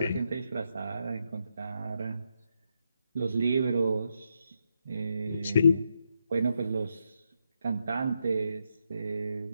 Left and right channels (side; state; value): both; inverted; correlation -0.81